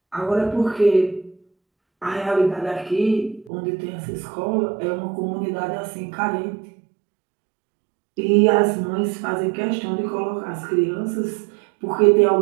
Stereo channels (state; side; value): drops out; left; at 3.5 s